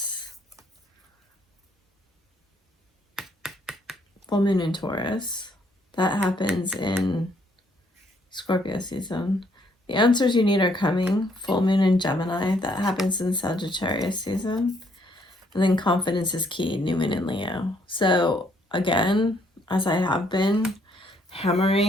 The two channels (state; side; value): normal; both; correlation 0.68